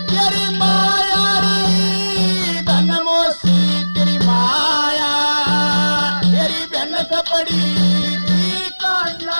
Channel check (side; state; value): both; inverted; correlation -1.00